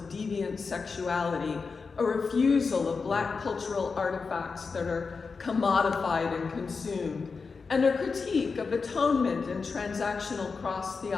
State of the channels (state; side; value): quieter; right; 4.8 dB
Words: deviant sexuality, a refusal of black cultural artifacts that are commodified and consumed, and a critique of atonement and transactional cross